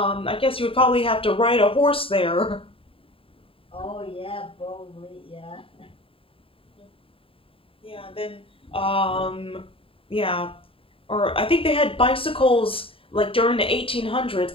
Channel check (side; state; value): right; late; 0.27 ms